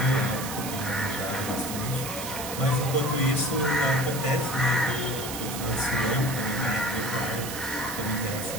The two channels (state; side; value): noise; right; hiss, 7 dB below the sound